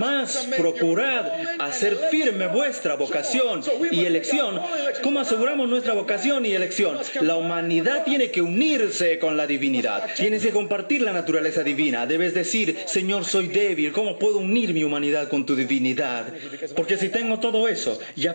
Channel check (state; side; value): inverted; both; correlation -1.00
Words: procurad hacer firme vuestra vocación y elección. ¿Cómo aseguramos nuestra vocación y elección? La humanidad tiene que unirse con la divinidad. Tienes que compartir la naturaleza divina. Debes decir, Señor, soy débil. ¿Cómo puedo unir mi humanidad con tu divinidad? Porque si tengo todo eso,